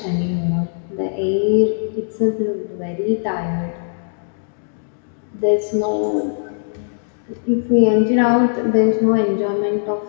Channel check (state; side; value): silent; right; digital silence